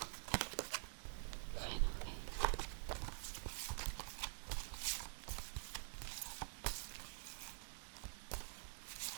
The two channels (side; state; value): left; silent; digital silence